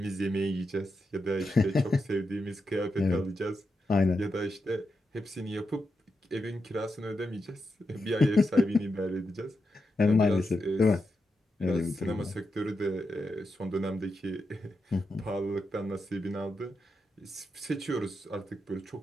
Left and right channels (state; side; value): normal; both; correlation 0.86